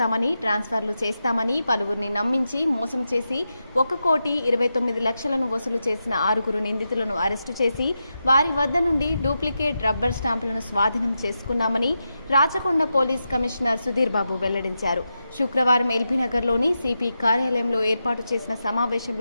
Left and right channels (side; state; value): both; inverted; correlation -0.88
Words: ట్రాన్స్ఫర్లు చేస్తామని పలువురిని నమ్మించి మోసం చేసి 1,29,00,000ను వసూలు చేసిన 6 నిందితులను అరెస్టు చేసి వారి వద్ద నుండి డూప్లికేట్ రబ్బర్ స్టాంపులను స్వాధీనం చేసుకున్నామని రాచకొండ పోలీస్ కమిషనర్ సుధీర్ బాబు వెల్లడించారు. శుక్రవారం ఎల్బీనగర్లోని సిపి కార్యాలయంలో ఏర్పాటు చేసిన